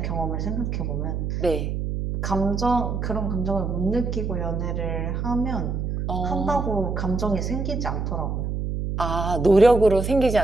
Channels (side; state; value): right; noise; hum, 2 dB below the sound